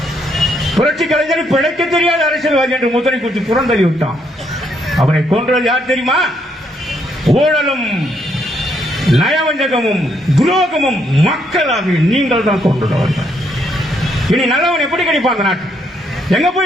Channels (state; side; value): normal; both; correlation 0.73